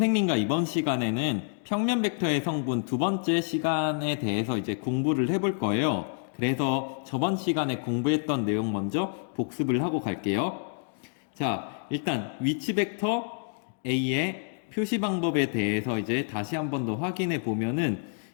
이번 시간에는 평면 벡터의 성분 두 번째 시간에 대해서 이제 공부를 해볼 거예요. 그래서 저번 시간에 공부했던 내용 먼저 복습을 하고 갈게요. 자, 일단 위치 벡터 A의 표시 방법에 대해서 이제 다시 한 번 더 확인해 보면은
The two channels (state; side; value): silent; right; digital silence